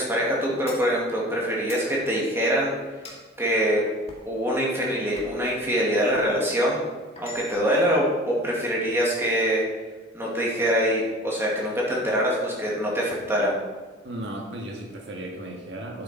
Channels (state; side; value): normal; both; correlation 0.41